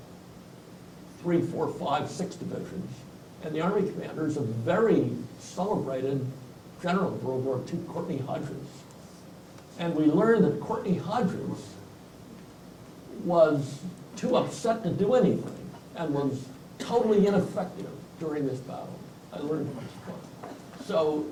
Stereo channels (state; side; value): identical; both; correlation 1.00